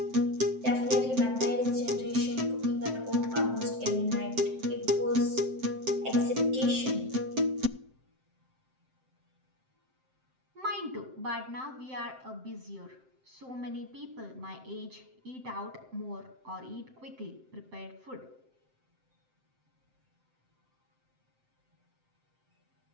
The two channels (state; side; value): late; left; 7.7 ms